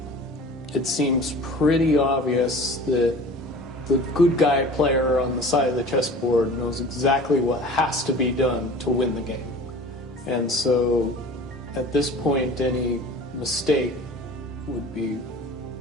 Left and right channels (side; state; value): both; normal; correlation 0.41